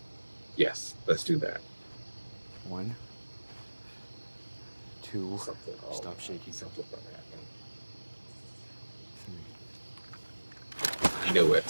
Yes, let's do that. 1, 2, Something. Stop shaking. Something about that. 3. I knew it.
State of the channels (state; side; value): inverted; both; correlation -1.00